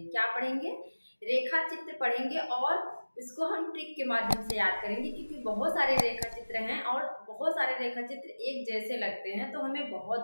क्या पढ़ेंगे? रेखा चित्र पढ़ेंगे और इसको हम ट्रिक के माध्यम से याद करेंगे, क्योंकि बहुत सारे रेखा चित्र हैं और बहुत सारे रेखा चित्र एक जैसे लगते हैं तो हमें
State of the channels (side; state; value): both; inverted; correlation -1.00